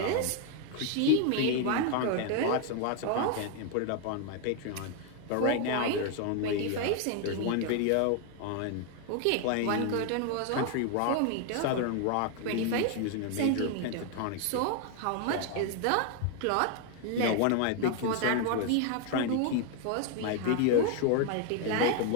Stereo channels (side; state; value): both; different; correlation 0.01